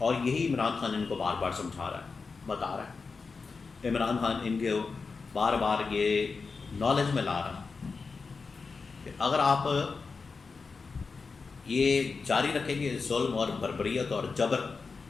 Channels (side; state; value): right; quieter; 4.6 dB